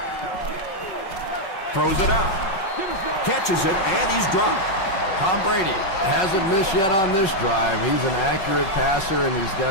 Throws it out. Catches it, and he's dropped. Tom Brady hasn't missed yet on this drive. He's an accurate passer, and he's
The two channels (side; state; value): right; late; 5.4 ms